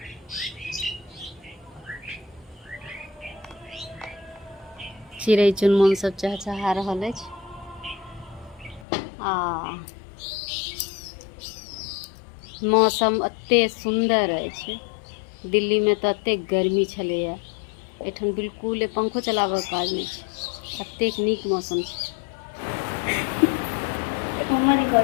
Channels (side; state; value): right; drops out; at 8.8 s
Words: चिड़ै चुनमुन सब चहचहा रहल अछि। मौसम अते सुंदर अछि। दिल्ली में तो अते गर्मी छलैया, एठन बिल्कुल पंखो चलाबऽ के काज नहीं छै, अतेक नीक मौसम छै।